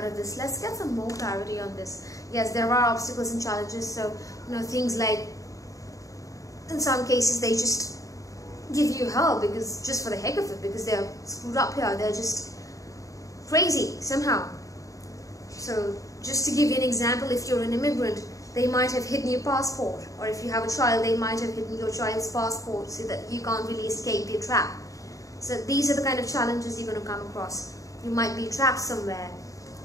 of this. Let's get some more clarity on this. Yes, there are obstacles and challenges. So, things like, in some cases, they just give you hell because just for the heck of it, because they're screwed up here. They're just crazy somehow. So just to give you an example, if you're an immigrant, they might have hidden your passport, or if you have a child, they might have hidden your child's passport so that you can't really escape their trap. So these are the kind of challenges you're going to come across. You might be trapped somewhere,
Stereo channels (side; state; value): right; late; 0.16 ms